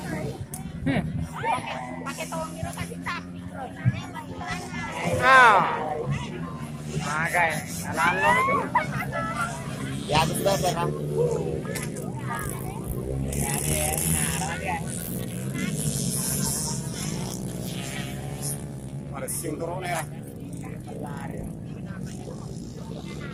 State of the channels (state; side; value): identical; both; correlation 1.00